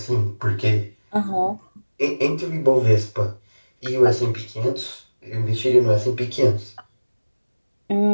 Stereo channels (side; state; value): both; inverted; correlation -1.00